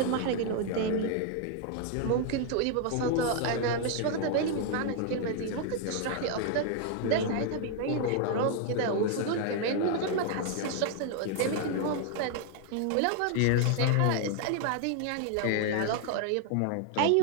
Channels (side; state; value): both; different; correlation 0.00